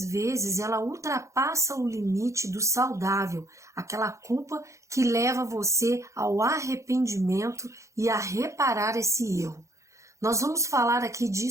vezes ela ultrapassa o limite do saudável, aquela culpa que leva você ao arrependimento e a reparar esse erro. Nós vamos falar aqui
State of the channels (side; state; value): left; late; 0.15 ms